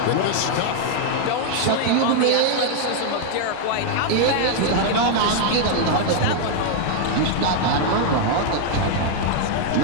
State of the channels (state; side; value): different; both; correlation 0.00